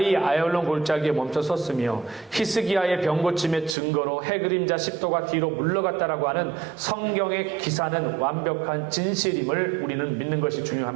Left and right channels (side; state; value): left; drops out; at 3.8 s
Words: 아얄론 골짜기에 멈춰섰으며 히스기야의 병 고침의 증거로 해 그림자 10도가 뒤로 물러갔다라고 하는 성경의 기사는 완벽한 진실임을 우리는 믿는 것이